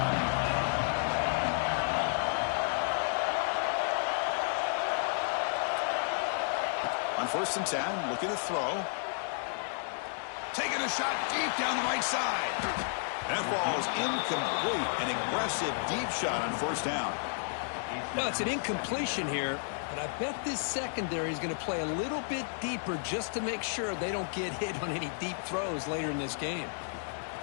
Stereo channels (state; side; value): silent; right; digital silence